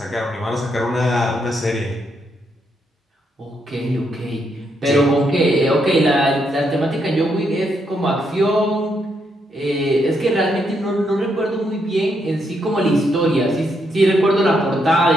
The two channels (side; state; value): both; normal; correlation 0.78